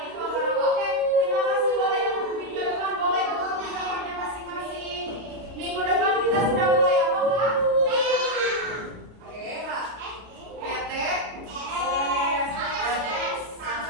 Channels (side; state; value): left; late; 33 ms